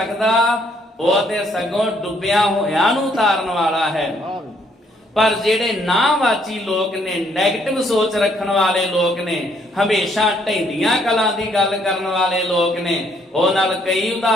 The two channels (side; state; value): both; normal; correlation 0.68